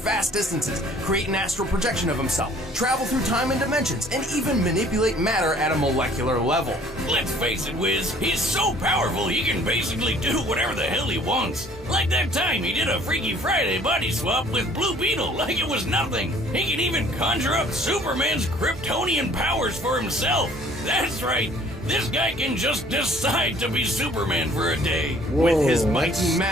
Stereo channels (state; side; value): normal; both; correlation 0.55